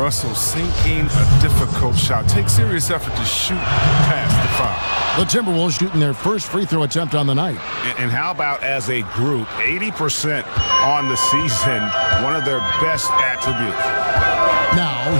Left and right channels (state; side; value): inverted; both; correlation -1.00